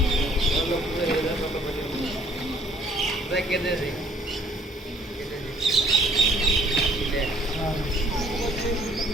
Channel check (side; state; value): both; normal; correlation 0.60